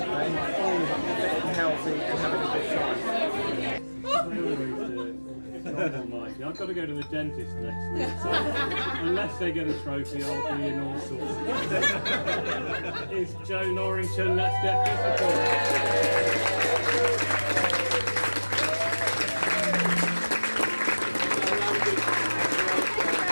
all fit and healthy and having a good time. Almighty. I've got to go to the dentist next week, so unless they get a trophy, I'll be in all sorts. It's Joe Norrington, let's get physical.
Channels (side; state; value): both; inverted; correlation -1.00